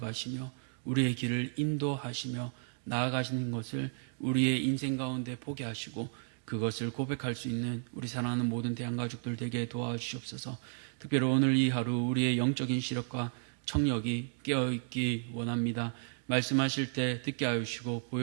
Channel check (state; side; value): silent; left; digital silence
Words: 우리의 길을 인도하시며 나아가시는 것을 우리의 인생 가운데 보게 하시고 그것을 고백할 수 있는 우리 사랑하는 모든 대한가족들 되게 도와주시옵소서. 특별히 오늘 이 하루 우리의 영적인 시력과 청력이 깨어있기 원합니다. 말씀하실 때 듣게 하여 주시고